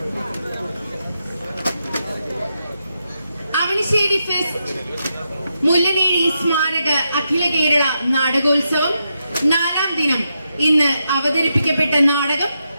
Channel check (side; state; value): both; inverted; correlation -0.84